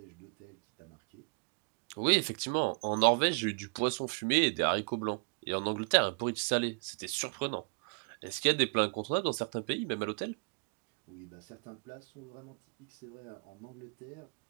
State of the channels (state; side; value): quieter; left; 38.9 dB